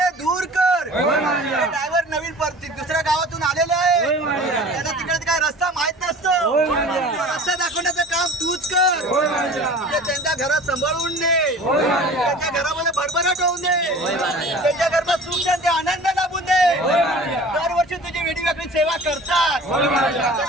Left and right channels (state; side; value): normal; both; correlation 0.42